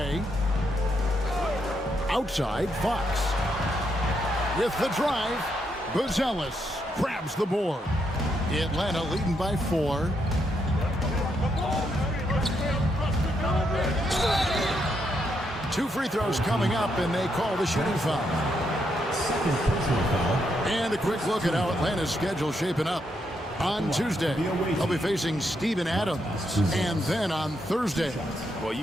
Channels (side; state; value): both; normal; correlation 0.79